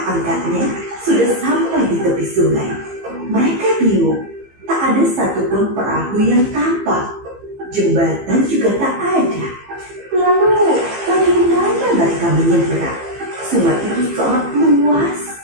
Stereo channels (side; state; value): left; late; 15 ms